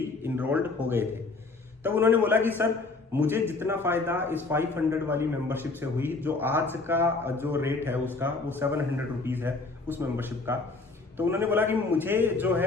इनरोल्ड हो गए थे। तब उन्होंने बोला कि सर मुझे जितना फायदा इस 500 वाली मेंबरशिप से हुई, जो आज का जो रेट है उसका वो 700 रुपीज़ है उस मेंबरशिप का। तो उन्होंने बोला कि मुझे जो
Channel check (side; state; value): right; quieter; 3.7 dB